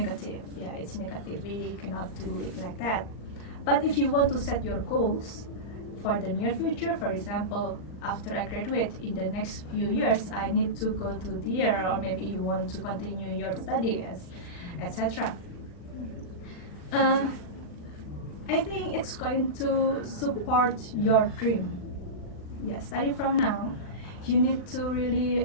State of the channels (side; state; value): right; late; 39 ms